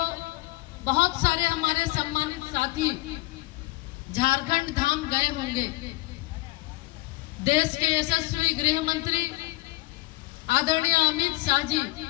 बहुत सारे हमारे सम्मानित साथी झारखंड धाम गए होंगे। देश के यशस्वी गृह मंत्री आदरणीय अमित शाह जी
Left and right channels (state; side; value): quieter; right; 20.5 dB